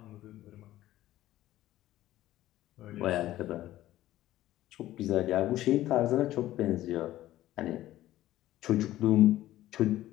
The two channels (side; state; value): right; quieter; 14.7 dB